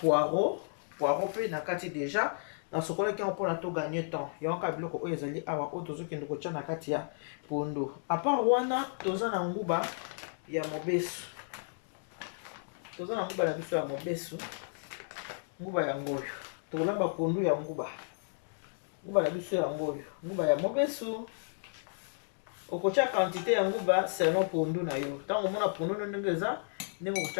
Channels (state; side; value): silent; right; digital silence